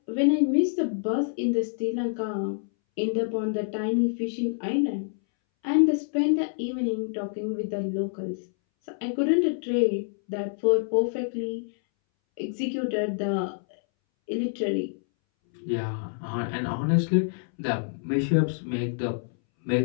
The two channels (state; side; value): silent; right; 60 dB below the other